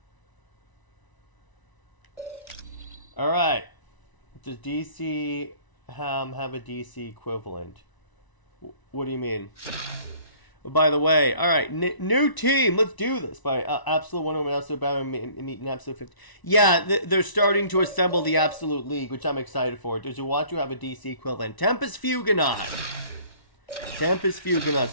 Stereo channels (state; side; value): late; right; 1.0 ms